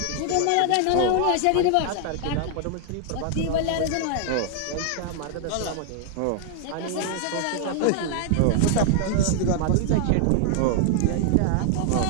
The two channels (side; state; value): both; different; correlation 0.00